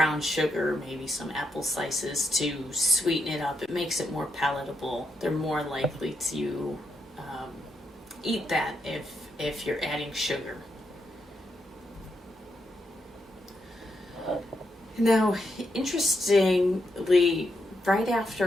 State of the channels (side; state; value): both; normal; correlation 0.82